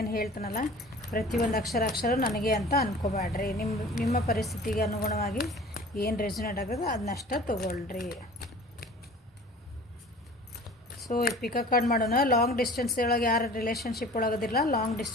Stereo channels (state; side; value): normal; both; correlation 0.44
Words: ಹೇಳ್ತಾನಲ್ಲ ಪ್ರತಿಯೊಂದು ಅಕ್ಷರ ನನಗೆ ಅಂತ ಅಂದ್ಕೋಬೇಡ್ರಿ. ನಿಮ್ಮ ಪರಿಸ್ಥಿತಿಗೆ ಅನುಗುಣವಾಗಿ ಏನು ರೆಸೊನೇಟ್ ಆಗೋದು ಅದನ್ನಷ್ಟ ತೊಗೊಳ್ರಿ. ಸೊ ಪಿಕಪ್ ಕಾರ್ಡ್ ಮಾಡೋಣ. ಲಾಂಗ್ ಡಿಸ್ಟೆನ್ಸ್ ಒಳಗೆ ಯಾರು ರಿಲೇಷನ್ಶಿಪ್ ಒಳಗದಿಲ್ಲ, ಲಾಂಗ್